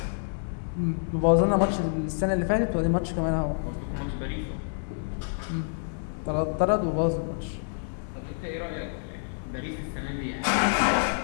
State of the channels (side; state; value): right; silent; digital silence